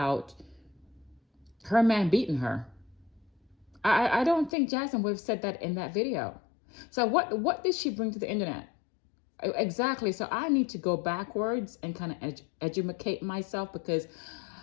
her man beating her. I don't think Jasmine would have said that in that video. So what did she bring to the internet? Exactly. So I need to go backwards and kind of educate myself because,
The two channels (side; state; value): right; drops out; at 4.5 s